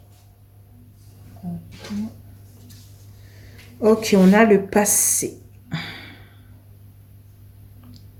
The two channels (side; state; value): both; identical; correlation 1.00